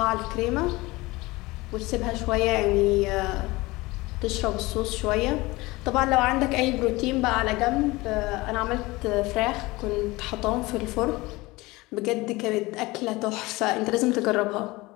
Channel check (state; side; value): quieter; right; 21.5 dB